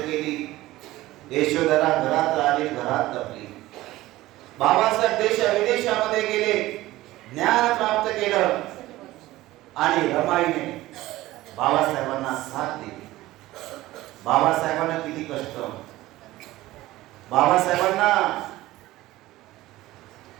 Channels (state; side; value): quieter; left; 17.1 dB